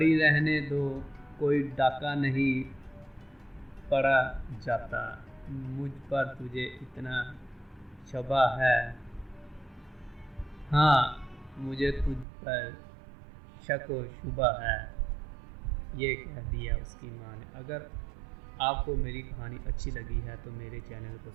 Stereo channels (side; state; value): left; drops out; at 12.2 s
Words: رہنے دو، کوئی ڈاکہ نہیں پڑا جاتا۔ مجھ پر تجھے اتنا شبہ ہے؟ ہاں، مجھے تجھ پر شک و شبہ ہے، یہ کہہ دیا اس کی ماں نے۔ اگر آپ کو میری کہانی اچھی لگی ہے تو میرے چینل کو